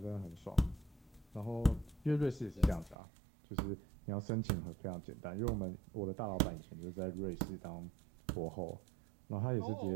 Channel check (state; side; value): drops out; left; at 3.0 s